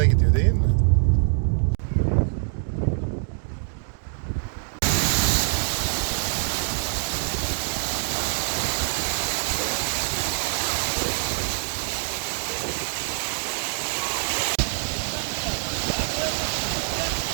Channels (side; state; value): left; silent; digital silence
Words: gidiyor değil mi?